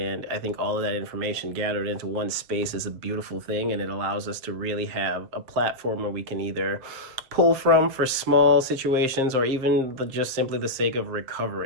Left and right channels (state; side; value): late; left; 7.6 ms